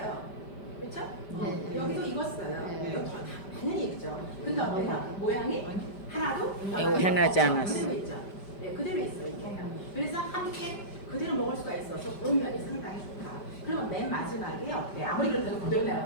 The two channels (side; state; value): right; late; 5.0 ms